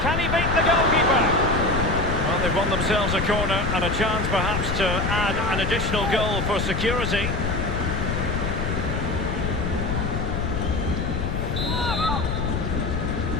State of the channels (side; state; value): left; noise; rumble, 1 dB below the sound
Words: Can he beat the goalkeeper? Well, they've won themselves a corner and a chance perhaps to add an additional goal for security.